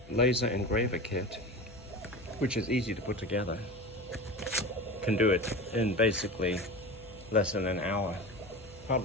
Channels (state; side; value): noise; left; hum, 21 dB below the sound